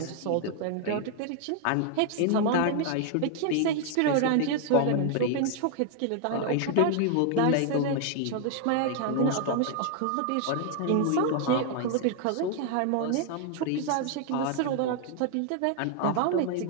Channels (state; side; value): different; both; correlation 0.00